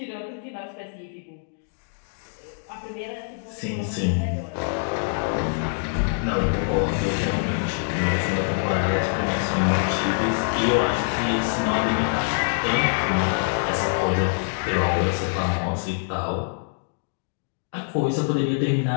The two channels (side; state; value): right; silent; digital silence